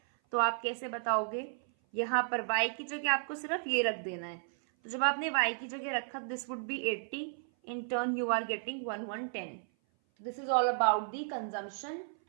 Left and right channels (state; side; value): silent; left; 55 dB below the other